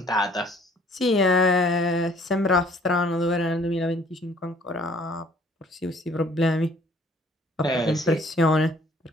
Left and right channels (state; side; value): normal; both; correlation 0.57